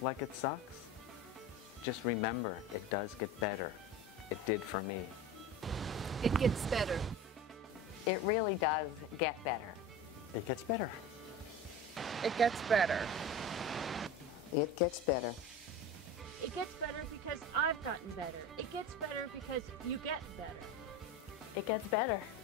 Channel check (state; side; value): normal; both; correlation 0.31